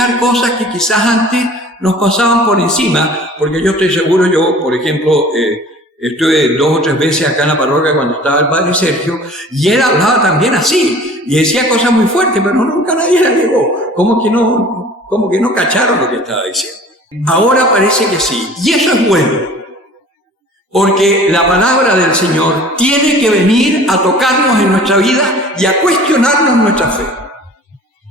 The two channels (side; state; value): both; normal; correlation 0.46